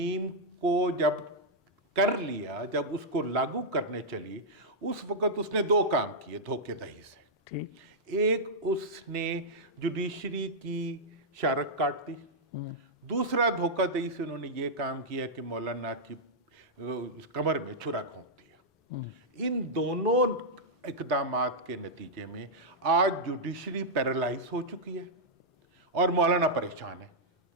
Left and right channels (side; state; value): both; normal; correlation -0.07